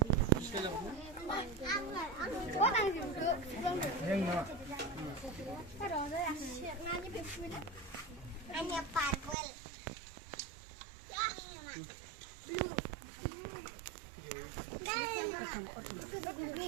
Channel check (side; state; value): left; drops out; at 9.3 s